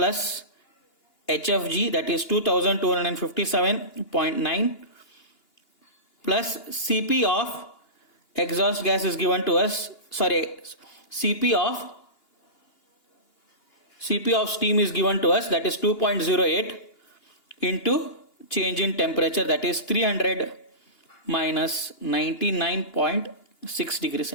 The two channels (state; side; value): late; right; 2.9 ms